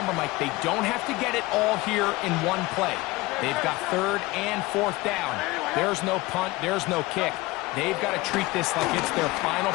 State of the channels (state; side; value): quieter; right; 20.9 dB